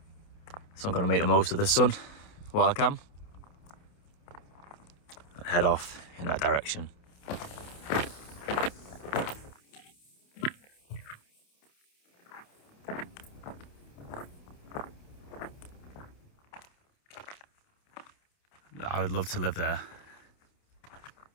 So I'm going to make the most of the sun while I can and head off in that direction. I would love to live there.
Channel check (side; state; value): right; late; 29 ms